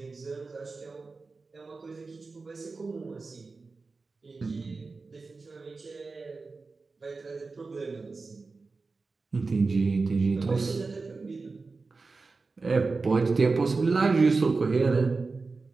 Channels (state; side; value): quieter; left; 4.0 dB